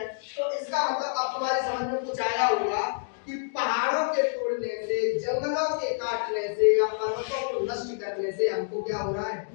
तो इसका मतलब अब तुम्हारी समझ में कुछ आया होगा कि पहाड़ों के तोड़ने से, जंगलों के काटने से या पर्वतों को नष्ट करने से हमको क्या हो रहा है।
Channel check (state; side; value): silent; right; digital silence